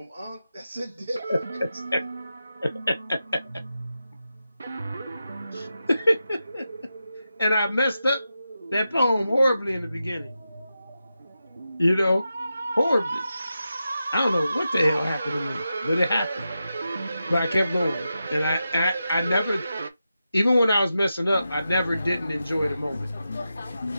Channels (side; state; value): both; inverted; correlation -0.90